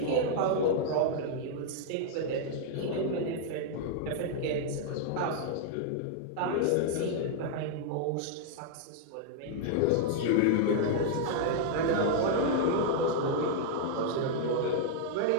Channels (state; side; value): different; both; correlation -0.01